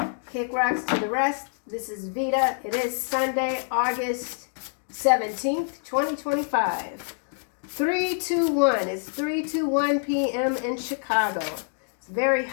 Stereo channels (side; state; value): right; silent; digital silence